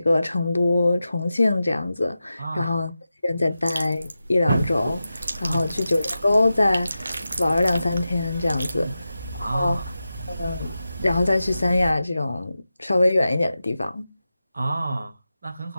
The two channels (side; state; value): both; inverted; correlation -0.92